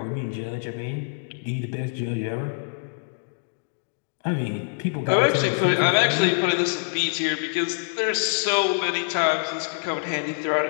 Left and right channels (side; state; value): right; silent; digital silence